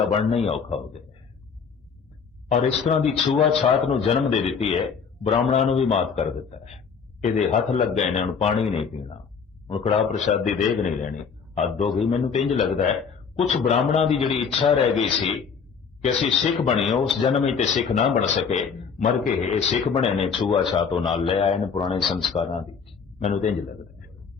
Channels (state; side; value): quieter; right; 6.1 dB